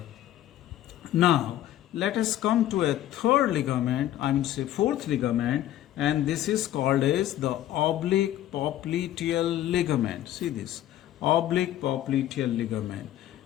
Now let us come to a third ligament, I mean say fourth ligament, and this is called as the oblique popliteal ligament. See this, oblique popliteal ligament.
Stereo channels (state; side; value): quieter; right; 13.0 dB